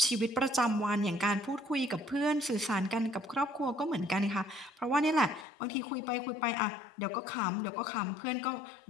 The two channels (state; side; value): drops out; right; at 5.5 s